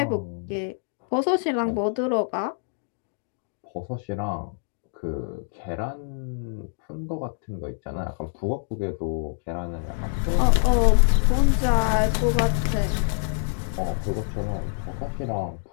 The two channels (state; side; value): silent; right; digital silence